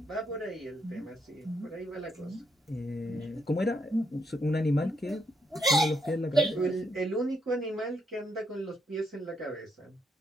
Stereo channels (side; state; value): both; normal; correlation 0.77